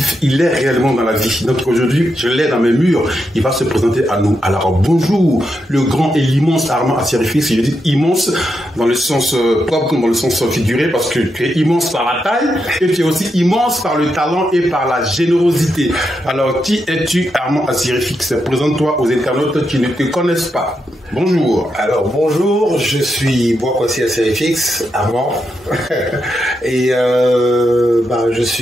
est réellement dans la vie. Donc aujourd'hui, je l'ai dans mes murs. Il va se présenter à nous. Alors bonjour, le grand et l'immense Armand Assirifix. Je dis immense dans le sens propre comme dans le sens figuré parce que tu es immense par la taille et tu es aussi immense par le talent et par la générosité. Alors qui es-tu, Armand Assirifix? Présente-toi aux internautes qui ne te connaissent pas. Bonjour. Alors bonjour, je suis Boakwasi Assirifix, Armand, et je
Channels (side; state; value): both; normal; correlation 0.84